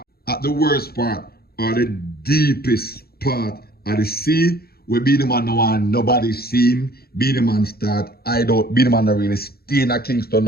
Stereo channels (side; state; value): right; late; 0.45 ms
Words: at the worst part or the deepest part of the sea, where Beenieman no one nobody see him. Beenieman start hide out. Beenieman not really stay in a Kingston